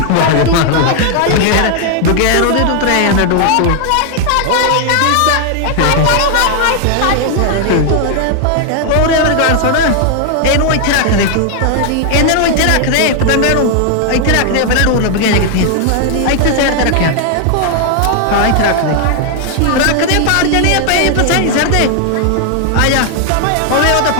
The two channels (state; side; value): different; both; correlation 0.00